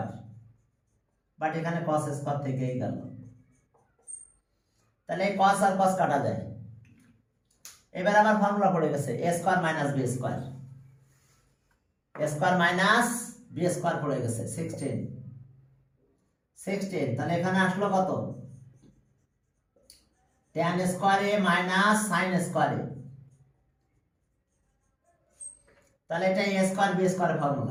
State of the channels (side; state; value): both; identical; correlation 1.00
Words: but এখানে cos স্কয়ার থেকেই গেল। তাহলে এই cos আর cos কাটা যায়। এবার আবার ফর্মুলা পড়ে গেছে a square minus b square, a square minus b square পড়ে গেছে 16 তাহলে এখানে আসলো কত tan square a minus sin square a, তাহলে এটা a স্কয়ার b স্কয়ারের